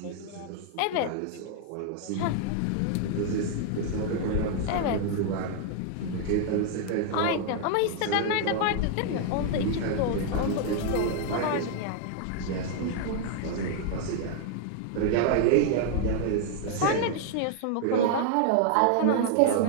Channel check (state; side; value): different; both; correlation 0.00